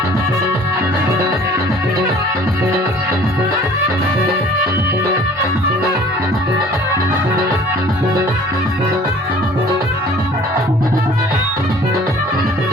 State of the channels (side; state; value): both; normal; correlation 0.51